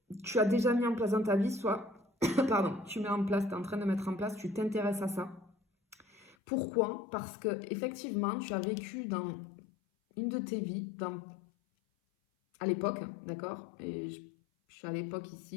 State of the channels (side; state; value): right; drops out; at 6.4 s